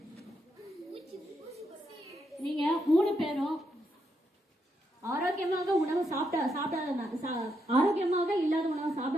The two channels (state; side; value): normal; both; correlation 0.80